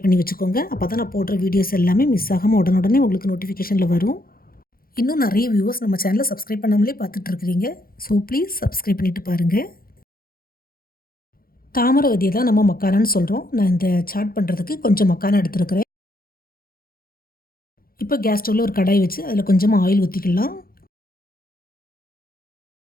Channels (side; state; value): right; late; 0.42 ms